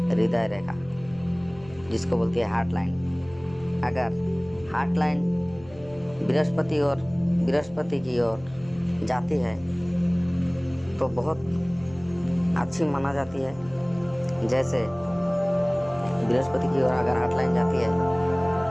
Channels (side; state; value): left; noise; hum, 22 dB below the sound